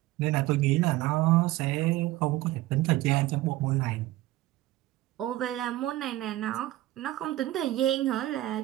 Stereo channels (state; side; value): quieter; left; 16.4 dB